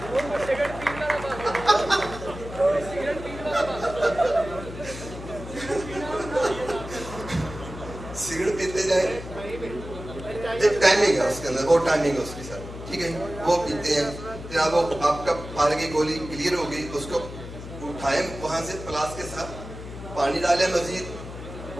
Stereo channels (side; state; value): left; noise; hum, 11 dB below the sound